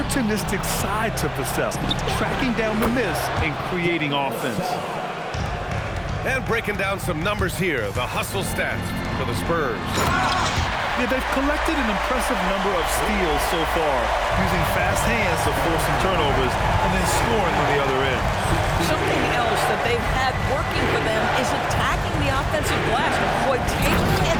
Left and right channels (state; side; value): identical; both; correlation 1.00